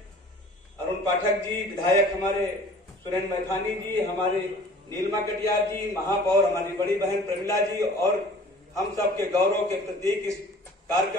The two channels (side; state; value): both; normal; correlation 0.48